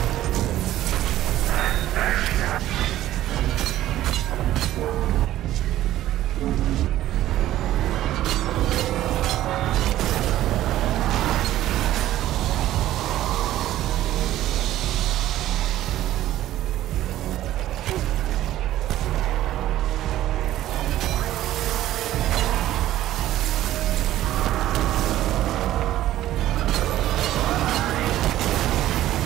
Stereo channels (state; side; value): quieter; left; 13.8 dB